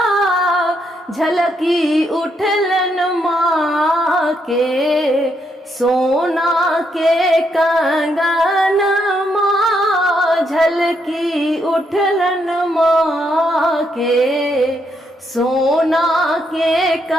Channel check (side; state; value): both; normal; correlation 0.77